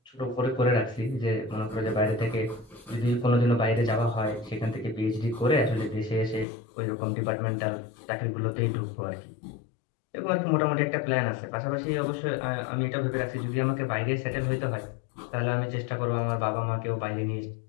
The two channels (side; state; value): right; drops out; at 6.5 s